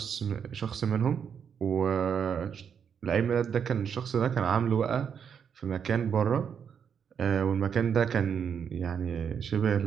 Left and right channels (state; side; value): quieter; left; 7.4 dB